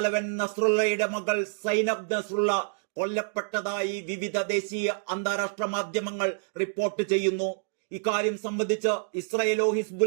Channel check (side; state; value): left; silent; digital silence